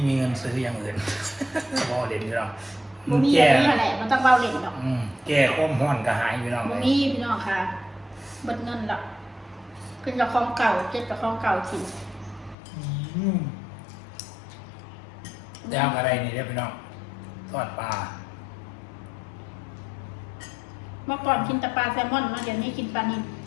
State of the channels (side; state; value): right; drops out; at 12.6 s